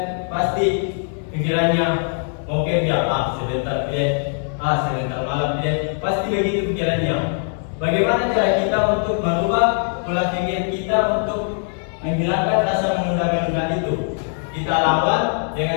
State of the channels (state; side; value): silent; right; 59 dB below the other